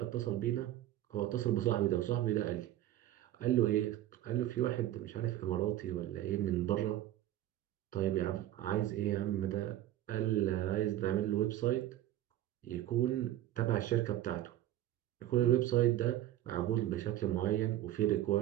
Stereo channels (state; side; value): quieter; left; 13.4 dB